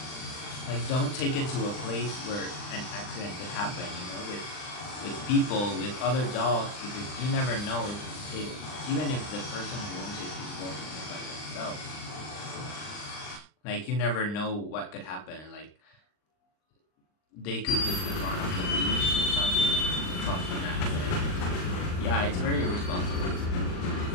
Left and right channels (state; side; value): late; right; 39 ms